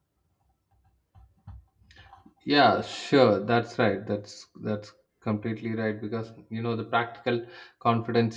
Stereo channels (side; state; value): both; identical; correlation 1.00